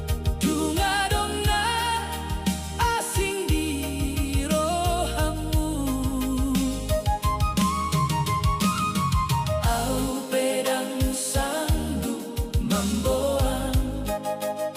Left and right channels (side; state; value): both; identical; correlation 1.00